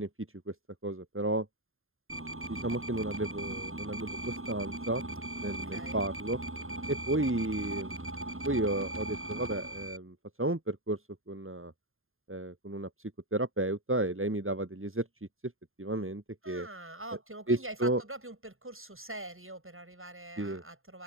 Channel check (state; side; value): late; left; 0.61 ms